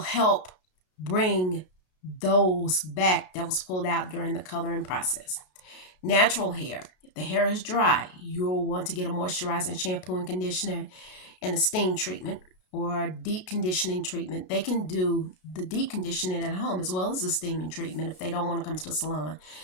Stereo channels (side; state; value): right; late; 33 ms